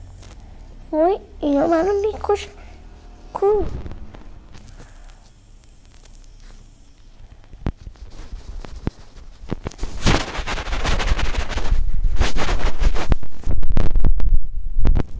وای اینا منو میکشن. کو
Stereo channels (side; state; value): both; identical; correlation 1.00